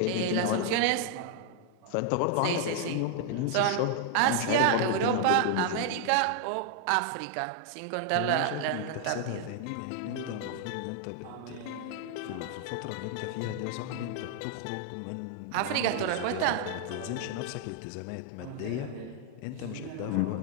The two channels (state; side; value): different; both; correlation 0.00